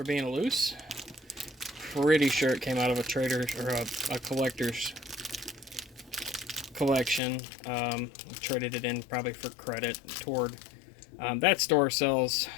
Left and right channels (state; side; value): drops out; right; at 7.2 s